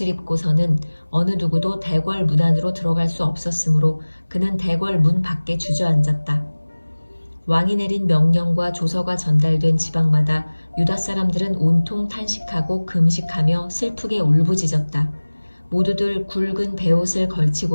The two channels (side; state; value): both; inverted; correlation -1.00